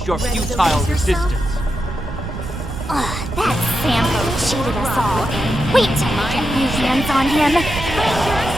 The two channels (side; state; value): right; noise; rumble, 7 dB below the sound